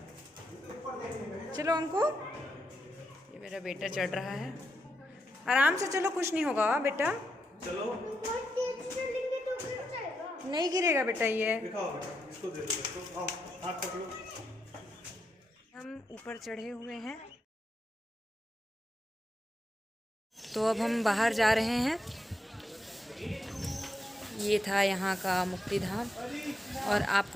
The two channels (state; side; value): normal; both; correlation 0.84